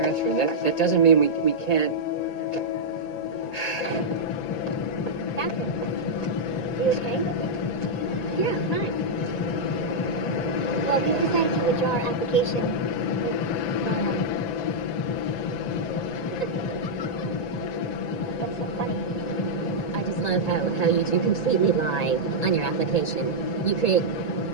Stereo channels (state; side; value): late; right; 1.9 ms